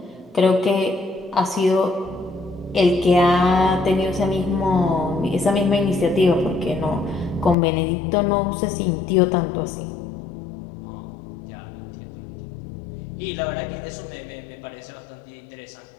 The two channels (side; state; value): right; drops out; at 7.6 s